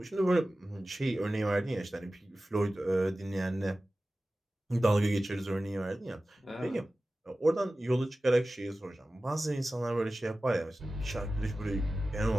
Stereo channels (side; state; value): both; normal; correlation 0.96